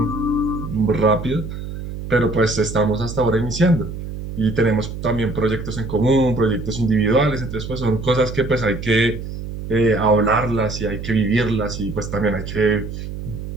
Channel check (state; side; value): noise; right; hum, 8 dB below the sound